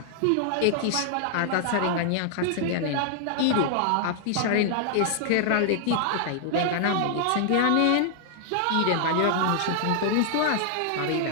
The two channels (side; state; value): both; different; correlation 0.00